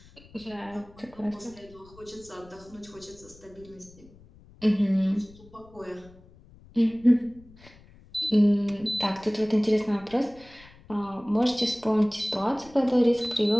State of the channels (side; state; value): left; noise; rumble, 24 dB below the sound